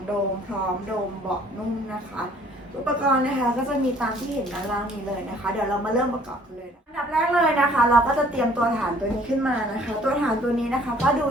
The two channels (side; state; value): both; normal; correlation 0.57